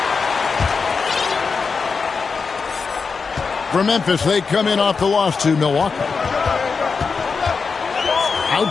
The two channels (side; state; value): right; quieter; 5.0 dB